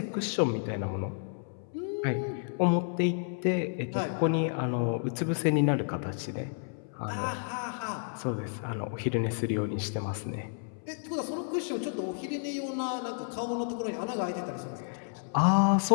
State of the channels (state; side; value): silent; right; 57 dB below the other